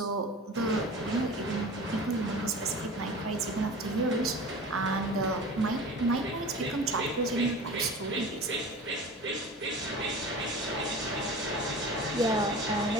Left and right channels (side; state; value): both; normal; correlation 0.36